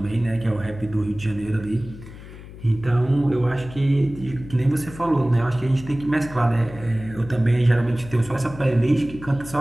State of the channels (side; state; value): left; noise; hum, 15 dB below the sound